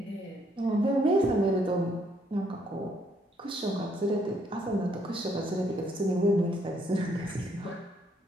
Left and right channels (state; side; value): normal; both; correlation 0.70